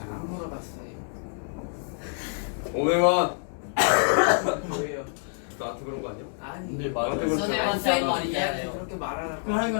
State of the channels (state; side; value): silent; right; digital silence